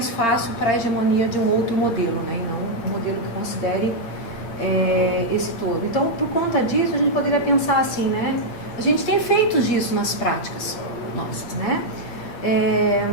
fácil para a hegemonia de um outro modelo, né, e não um modelo que considere esse todo. Então, por conta disso, a gente poderia pensar assim, né? A gente tem efeitos disso nas práticas nossas, né?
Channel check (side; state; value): right; late; 8.7 ms